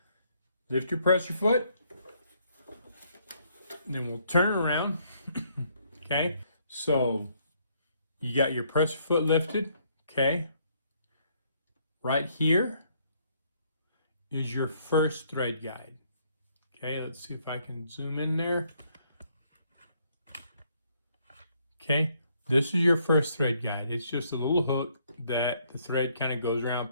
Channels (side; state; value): both; inverted; correlation -0.69